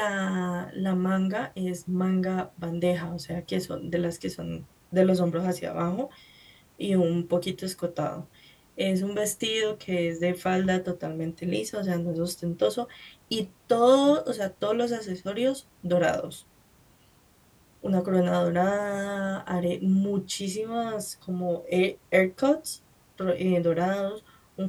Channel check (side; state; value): both; identical; correlation 1.00